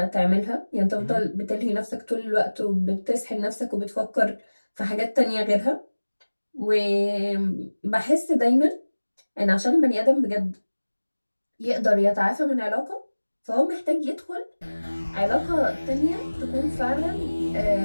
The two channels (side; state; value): both; inverted; correlation -1.00